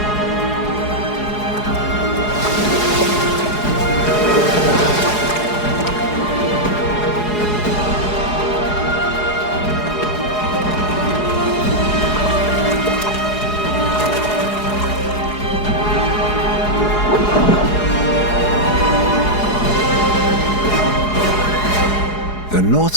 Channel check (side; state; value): right; late; 4.8 ms